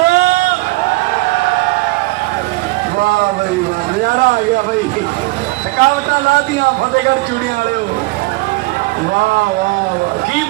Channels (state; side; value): quieter; left; 22.0 dB